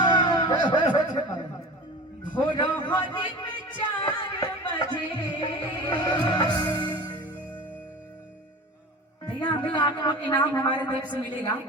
भोर होने में 4 बजे। भैया अभी आपको इनाम हमारे तरफ से मिलेगा।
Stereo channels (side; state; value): both; normal; correlation 0.35